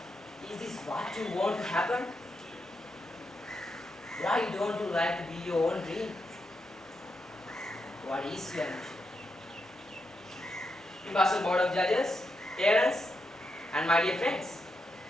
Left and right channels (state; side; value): normal; both; correlation 0.84